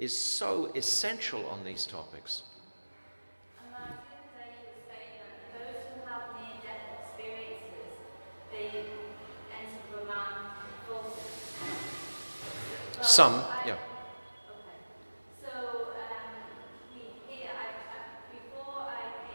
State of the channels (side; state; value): both; inverted; correlation -1.00